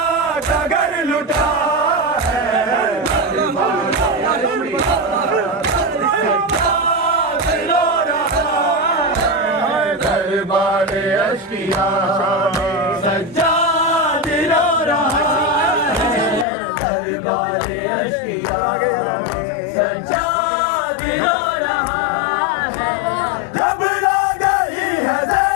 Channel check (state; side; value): drops out; right; at 16.4 s